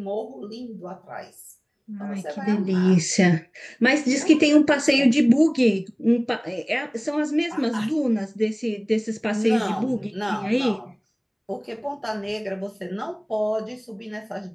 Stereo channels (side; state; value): both; identical; correlation 1.00